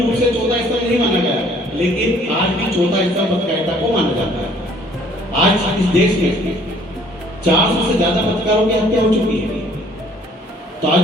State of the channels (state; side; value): normal; both; correlation 0.59